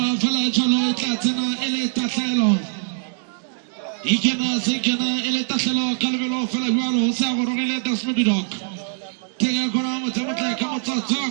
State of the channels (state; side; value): silent; left; 64 dB below the other